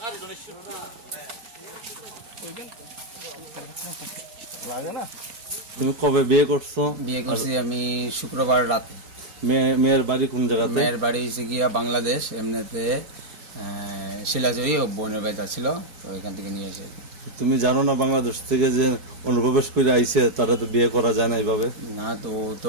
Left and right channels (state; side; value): late; left; 5.2 ms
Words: লাগে না। তুমি কবে বিয়ে করছো? বিয়ে করছি আমি শুক্রবার রাতে। মেয়ের বাড়ি কোন জায়গাতে? মেয়ের বাড়ি হচ্ছে গিয়া বাংলাদেশ, এমনিতে শিলাজয়ী ও বোনের বাড়িতে ছিল, তো এখান থেকে নিয়ে এসে। তুমি জানো না বাংলাদেশ থেকে যে অনুপ্রবেশ করে আইছে তারা তো বিয়ে করা যায় না এইভাবে? না, তো